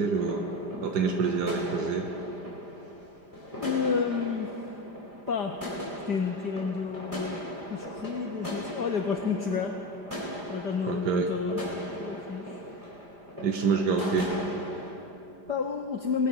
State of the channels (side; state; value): left; late; 5.0 ms